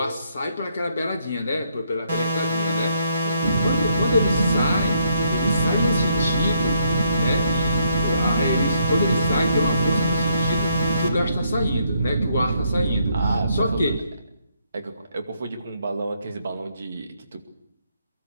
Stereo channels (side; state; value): both; inverted; correlation -0.73